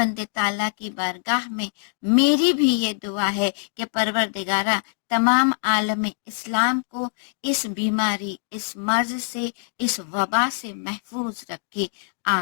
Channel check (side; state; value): right; silent; digital silence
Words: تعالیٰ کی بارگاہ میں میری بھی یہ دعا ہے کہ پروردگارہ تمام عالم اسلام کو اس بیماری، اس مرض سے، اس وبا سے محفوظ رکھے،